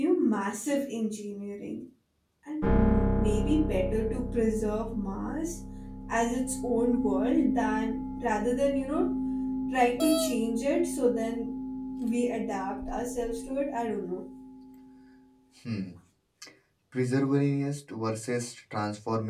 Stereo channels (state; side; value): identical; both; correlation 1.00